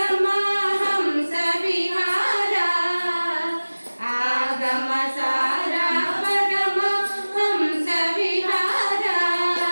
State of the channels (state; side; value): inverted; both; correlation -1.00